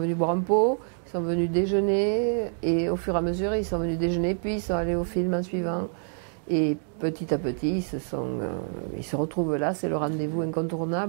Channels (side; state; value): left; silent; 60 dB below the other